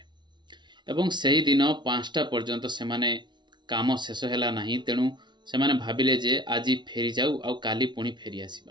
ଏବଂ ସେହିଦିନ 5ଟା ପର୍ଯ୍ୟନ୍ତ ସେମାନେ କାମ ଶେଷ ହେଲା ନାହିଁ, ତେଣୁ ସେମାନେ ଭାବିଲେ ଯେ ଆଜି ଫେରିଯାଉ ଆଉ କାଲି ପୁଣି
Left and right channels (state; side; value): late; left; 0.22 ms